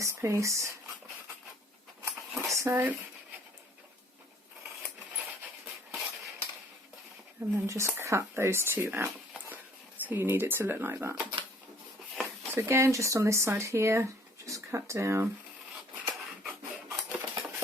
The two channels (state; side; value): normal; both; correlation 0.58